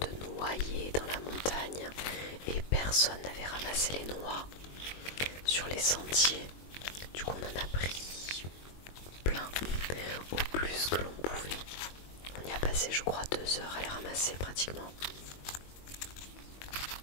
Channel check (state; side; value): late; right; 22 ms